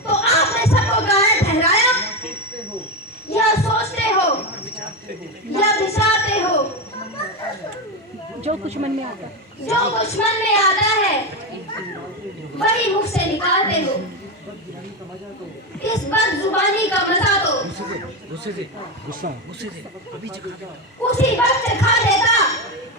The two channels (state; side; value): normal; both; correlation 0.13